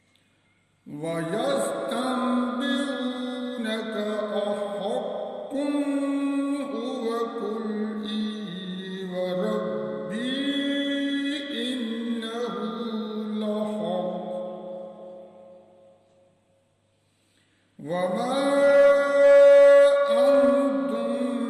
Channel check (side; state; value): both; identical; correlation 1.00